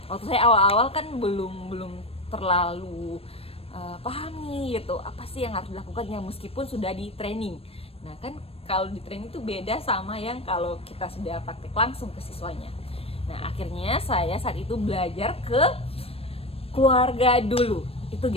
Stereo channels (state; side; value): late; right; 0.28 ms